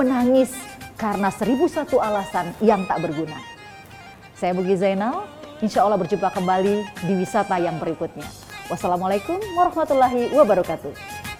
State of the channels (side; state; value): both; identical; correlation 1.00